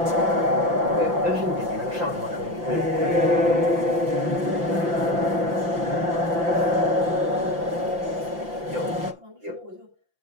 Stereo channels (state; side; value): late; left; 5.8 ms